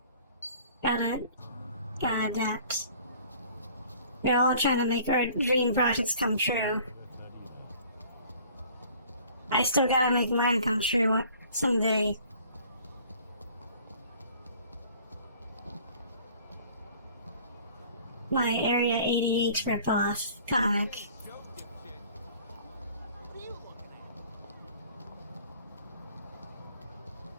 Gotta adapt. We're all trying to make our dream projects come true. I still gotta make mine come true someday. My Area 88 ripoff comic.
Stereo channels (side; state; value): both; inverted; correlation -0.52